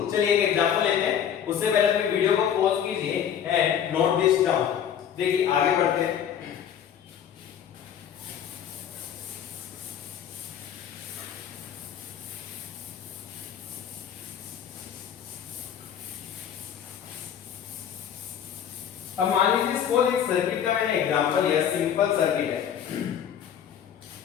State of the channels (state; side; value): quieter; right; 9.0 dB